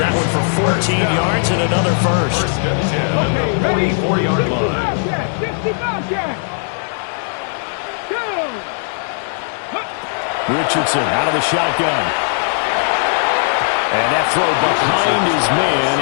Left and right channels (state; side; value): silent; right; 65 dB below the other